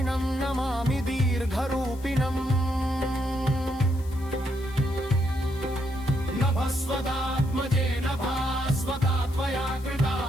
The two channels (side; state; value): left; noise; hiss, 22 dB below the sound